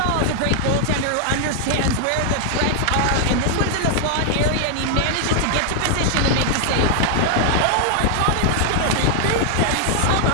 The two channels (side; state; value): both; different; correlation 0.00